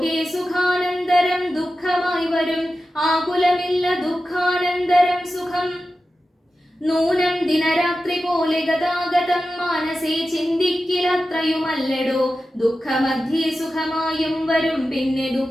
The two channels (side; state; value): both; normal; correlation 0.93